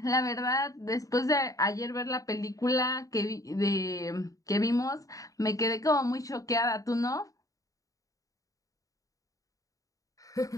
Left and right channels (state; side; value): late; right; 0.16 ms